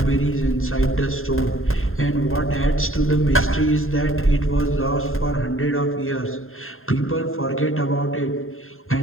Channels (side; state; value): right; late; 0.61 ms